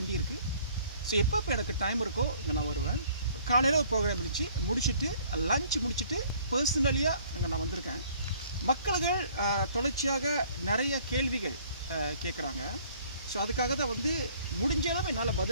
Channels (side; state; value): both; inverted; correlation -0.57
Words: இருக்குது. ஸோ எப்போ எனக்கு டைம் இருக்கோ இங்கே நான் வருவேன். காலையில் ஒரு ப்ரோக்ராம் முடிச்சுட்டு லஞ்ச் முடிச்சுட்டு பர்சனலியாக இங்கே நான் வந்திருக்கேன். மக்கள்கள் தொடர்ச்சியாக நிறைய கேள்விகள் கேட்குறாங்க. ஸோ அதுக்காக தான் வந்து முடிஞ்ச அளவு என்னால்